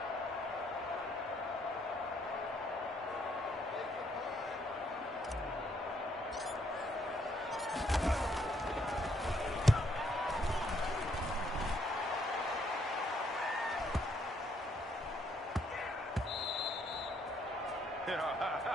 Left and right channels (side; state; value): both; normal; correlation 0.70